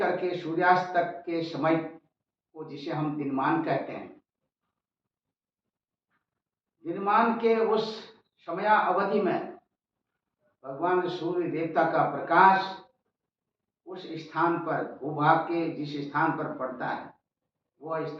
के सूर्यास्त तक के समय को, जिसे हम दिनमान कहते हैं, दिनमान के उस समया अवधि में भगवान सूर्य देवता का प्रकाश उस स्थान पर, भूभाग के जिस स्थान पर पड़ता है, वह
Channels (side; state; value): both; identical; correlation 1.00